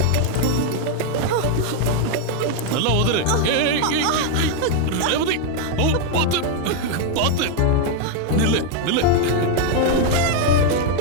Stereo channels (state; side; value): different; both; correlation 0.00